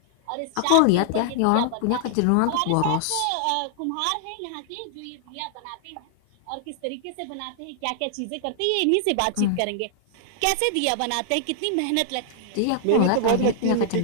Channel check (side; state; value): both; different; correlation -0.01